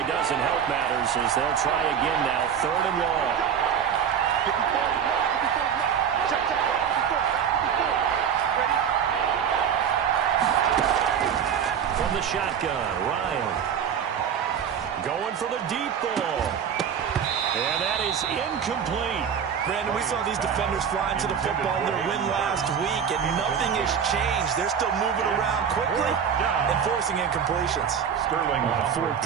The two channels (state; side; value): quieter; left; 7.9 dB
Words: doesn't help matters as they'll try again now. 3rd and long. The shotgun, Ryan going for the deep ball, and that is incomplete. Brandon, we saw these defenders flying to the football in their win last week, and nothing has changed. They're still moving around quickly and forcing incompletions. Sterling on 4th